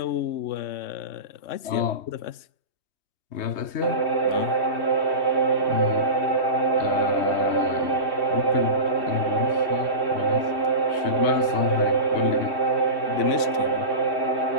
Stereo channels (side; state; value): right; late; 3.2 ms